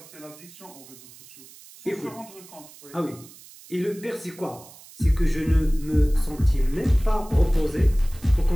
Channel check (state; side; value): noise; right; hiss, 21 dB below the sound